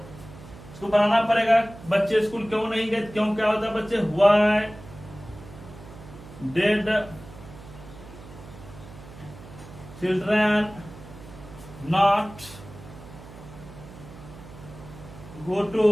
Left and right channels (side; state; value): right; noise; hum, 17 dB below the sound